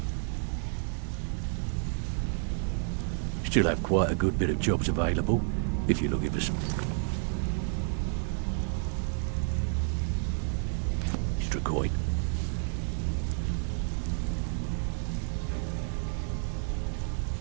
Still have quite a good bit of jobs available, if you're looking for some extra coin.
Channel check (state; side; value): silent; left; 58 dB below the other